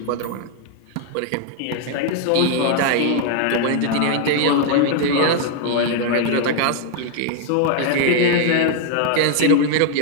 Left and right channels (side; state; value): both; different; correlation 0.00